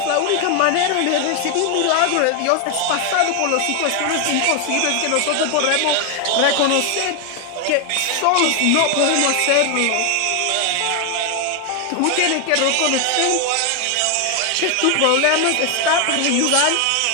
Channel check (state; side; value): different; both; correlation 0.01